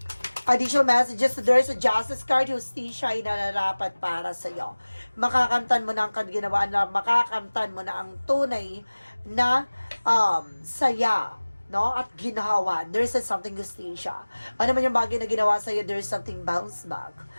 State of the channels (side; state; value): both; inverted; correlation -1.00